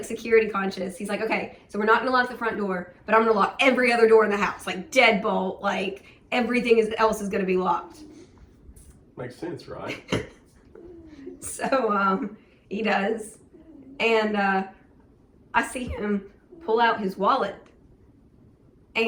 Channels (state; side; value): identical; both; correlation 1.00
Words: security conscious. He's like, okay, so we're not gonna lock the front door, but I'm gonna lock every other door in the house, like deadbolt, like everything else is gonna be locked. Makes sense, right? So he does, and I see him pull out his wallet,